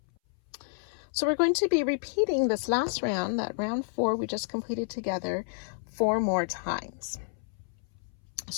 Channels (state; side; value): silent; right; 58 dB below the other